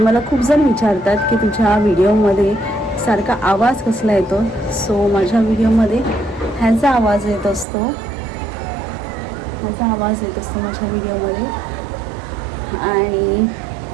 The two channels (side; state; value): left; drops out; at 7.7 s